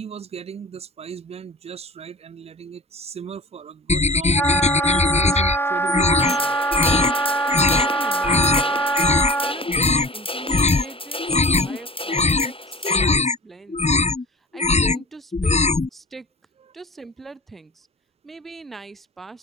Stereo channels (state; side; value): normal; both; correlation 0.38